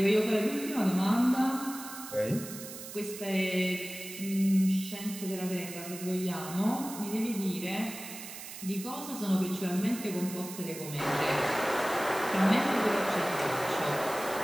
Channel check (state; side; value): noise; right; hiss, 11 dB below the sound